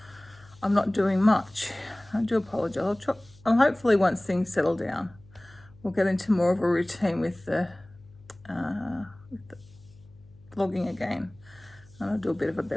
I'm not doing much. I do apologise. I'll hopefully once things settle down, we'll get into more of a routine with the vlogging again. And I'll do a bit of a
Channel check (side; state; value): left; noise; hum, 25 dB below the sound